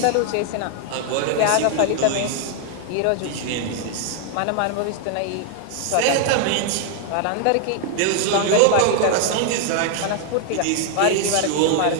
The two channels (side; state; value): both; different; correlation 0.00